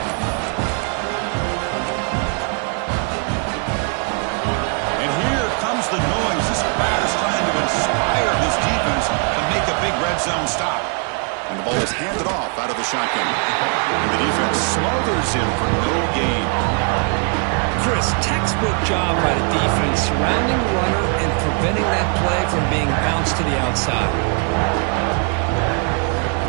The noise. This crowd is trying to inspire this defense to make a big red zone stop. And the ball is handed off out of the shotgun. And the defense smothers him for no gain. Chris, textbook job by the defense surrounding the runner and preventing that play from being bounced to the outside.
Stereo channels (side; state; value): left; quieter; 39.1 dB